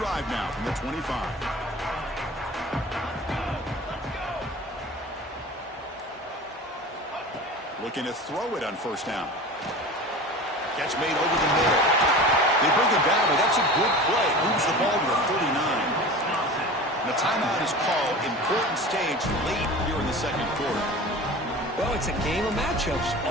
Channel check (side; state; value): both; normal; correlation 0.35